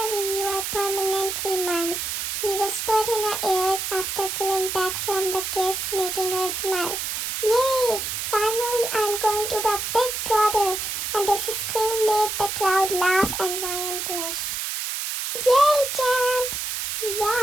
you are permanently mine, he whispered in her ears after pulling back from the kiss, making her smile. Yay! Finally, I'm going to be Big Brother! And this scream made the crowd laugh and Ryan blush. Yay, Champ!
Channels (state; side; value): noise; right; hiss, 3 dB below the sound